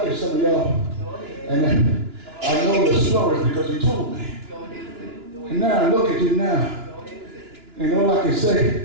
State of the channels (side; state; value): left; late; 2.9 ms